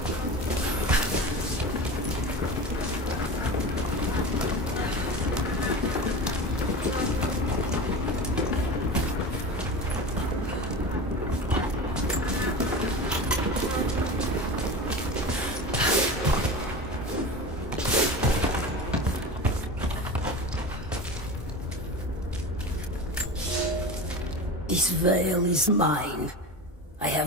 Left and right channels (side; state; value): both; normal; correlation 0.29